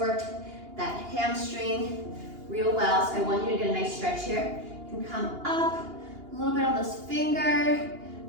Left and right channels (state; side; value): late; left; 2.8 ms